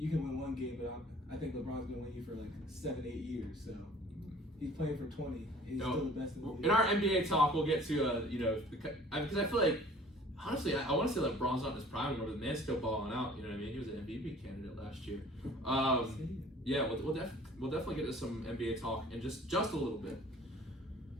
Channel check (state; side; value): normal; both; correlation 0.50